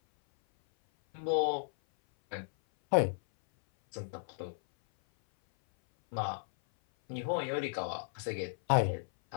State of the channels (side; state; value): right; silent; 55 dB below the other